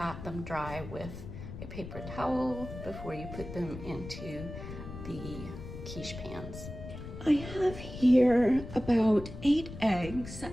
them dry with a paper towel before you put them into the quiche pans. I have here about 8 eggs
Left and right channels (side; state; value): left; noise; rumble, 11 dB below the sound